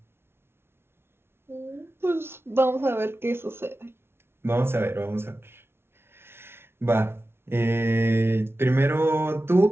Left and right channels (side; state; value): left; late; 0.12 ms